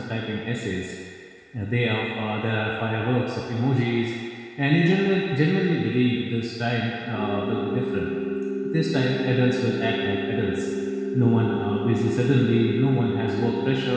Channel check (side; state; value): both; identical; correlation 1.00